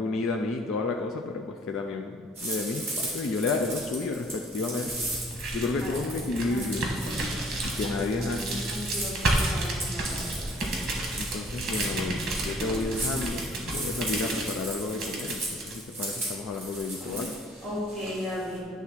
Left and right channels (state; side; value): normal; both; correlation 0.56